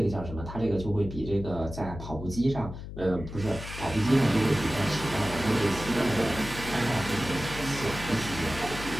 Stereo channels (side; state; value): left; noise; hum, 10 dB below the sound